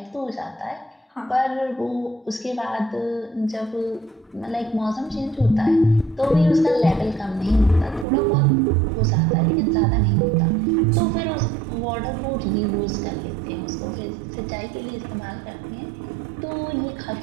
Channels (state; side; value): drops out; left; at 8.1 s